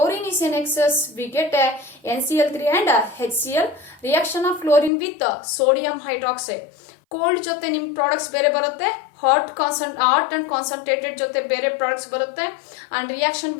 is in excess, we get a NCl3 and HCl. Reaction of chlorine with sodium hydroxide. Cold ಜೊತೆ ನಿಮ್ products ಬೇರೆ ಬರುತ್ತೆ, hot and concentrated ಜೊತೆ ಬೇರೆ products ಬರುತ್ತೆ. And reaction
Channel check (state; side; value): drops out; right; at 4.9 s